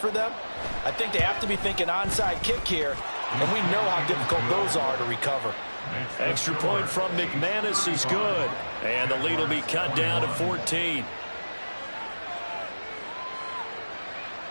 them. I think they have to be thinking onside kick here, and we know how difficult those are to recover. Extra point from McManus is good, and the lead will be cut down to 14.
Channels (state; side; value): inverted; both; correlation -1.00